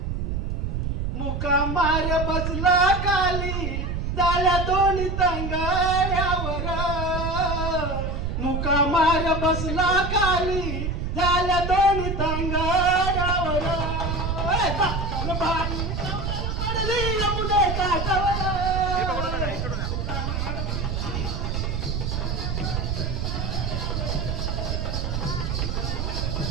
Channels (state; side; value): noise; right; rumble, 1 dB below the sound